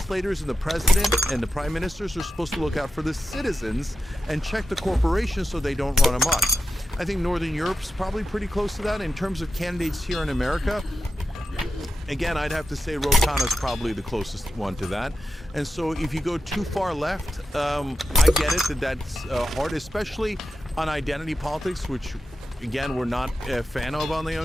and the president and the prime ministers are supposed to look out for the citizens and check the corporations so they don't run amok. I think Northern Europe's probably pretty close to that. In terms of candidates here in America, again, I'd have to say Ro Khanna's probably the closest one to that. And so if you go too far left, I get it that's hard, especially on identity politics, which again, we're not a fan of on the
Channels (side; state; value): both; normal; correlation 0.90